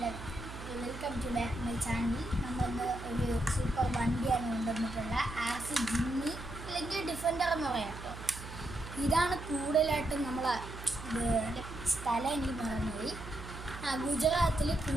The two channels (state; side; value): noise; right; hum, 12 dB below the sound